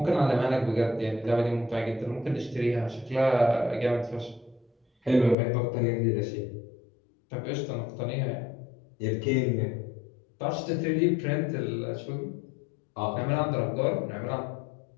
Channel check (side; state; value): right; drops out; at 5.4 s